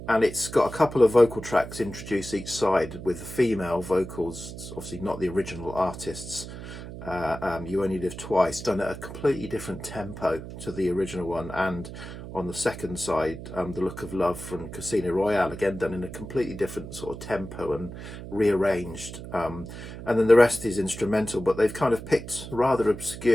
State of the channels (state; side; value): noise; right; hum, 11 dB below the sound